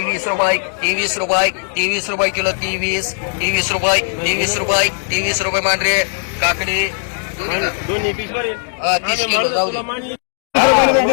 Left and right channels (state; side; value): silent; right; digital silence